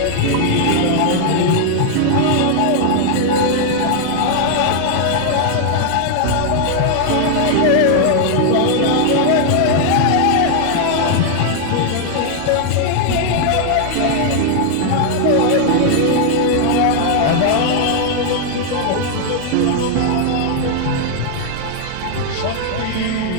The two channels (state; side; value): different; both; correlation 0.00